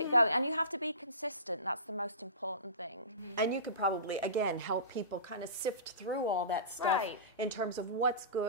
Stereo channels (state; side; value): inverted; both; correlation -0.33